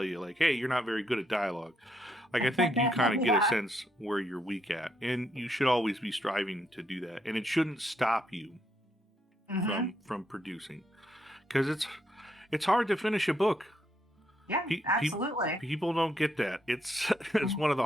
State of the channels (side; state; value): both; normal; correlation 0.76